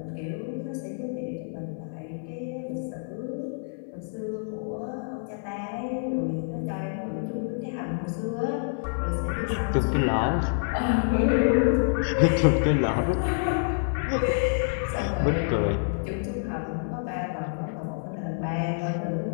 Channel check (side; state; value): right; silent; 58 dB below the other